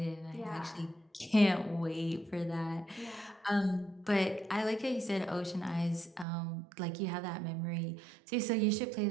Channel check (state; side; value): drops out; left; at 6.2 s